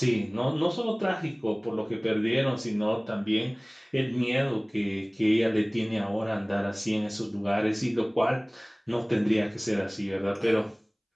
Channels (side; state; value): both; identical; correlation 1.00